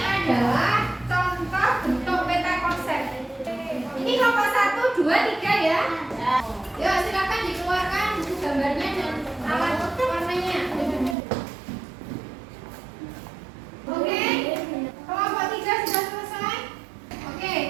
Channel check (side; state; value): left; drops out; at 11.2 s